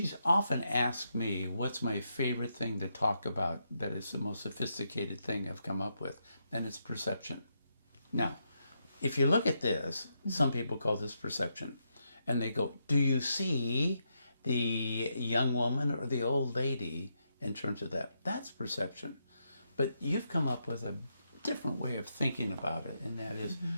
often asked me what's my favorite thing to talk about that is the most sophisticated thing I've come up with, and it's perception. Now, if you look at this, some people call this perception, and they go, do you see the young woman or the old lady in terms of that? That's perception. But you've come up with a different way of thinking about it, and that is,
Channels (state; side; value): inverted; both; correlation -0.81